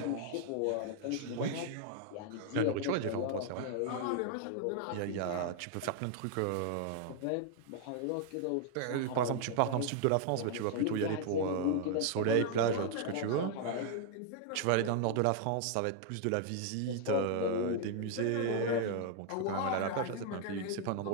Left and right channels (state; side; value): different; both; correlation 0.00